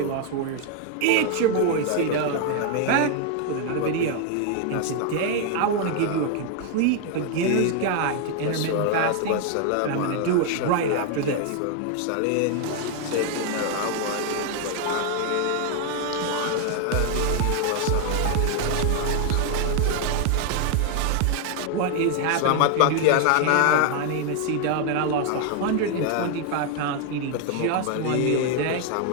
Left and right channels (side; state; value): both; different; correlation 0.00